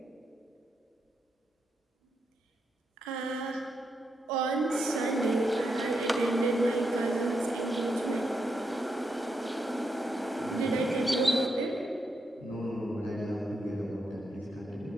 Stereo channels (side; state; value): both; normal; correlation 0.82